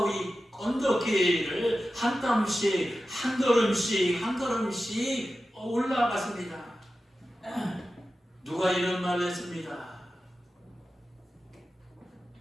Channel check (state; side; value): normal; both; correlation 0.93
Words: 언덕길을 한 땀씩 한 걸음씩 한 걸음씩 올라갔습니다. 누가 이런 말을 했습니다.